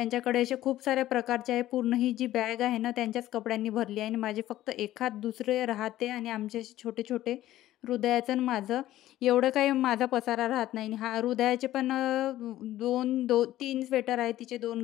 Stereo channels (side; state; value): right; quieter; 14.3 dB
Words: असे खूप साऱ्या प्रकारचे आहे. पूर्ण ही जी बॅग आहे ना त्यांच्याच कपड्यांनी भरली आहे आणि माझे फक्त एखाद दुसरे राहते आणि आमचे असे छोटे-छोटे हृदयाचं आणि माझं एवढं काही माझा पसारा राहत नाही. आणि हा हृदयाचे पण 3 स्वेटर आहे. तिचे 2